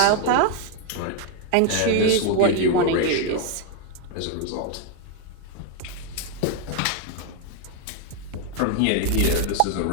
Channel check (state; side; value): different; both; correlation 0.01